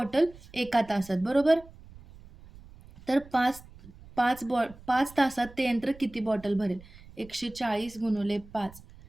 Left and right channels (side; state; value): right; noise; rumble, 21 dB below the sound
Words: एका तासात, बरोबर? तर 5 तासात ते यंत्र किती बॉटल भरेल? 140 गुणिले 5,